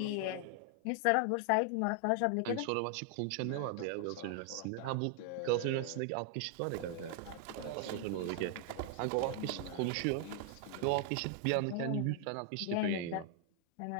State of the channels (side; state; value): both; different; correlation 0.00